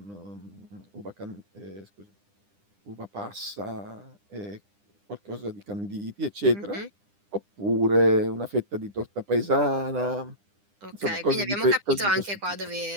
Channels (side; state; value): left; late; 9.9 ms